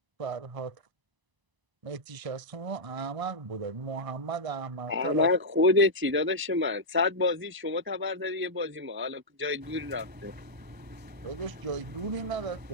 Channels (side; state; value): left; late; 1.0 ms